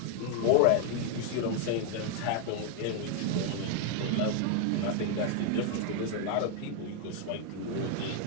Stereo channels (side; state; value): both; different; correlation 0.01